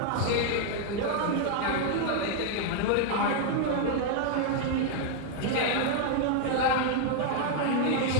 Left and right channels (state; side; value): different; both; correlation 0.00